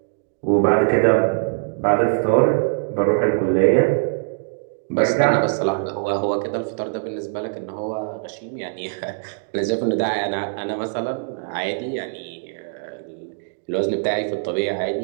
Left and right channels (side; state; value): left; silent; digital silence